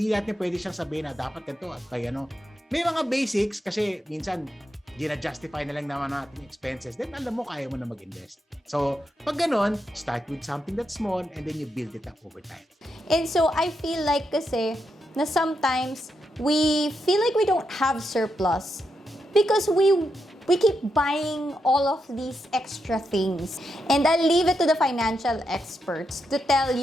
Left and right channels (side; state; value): both; normal; correlation 0.84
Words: natin pwede siyang sabihin na dapat ganito at kaya may mga basics kasi minsan, gina-justify na lang naman natin yung expenses, then alam mo, kaya mo na mag-invest. So, pag ganon, start with something that's small and then you build it up over time. And so, I feel like kasi na sometimes we feel like we don't have surplus because we keep buying all of these extra things. And I'll leave it to the financial experts to tell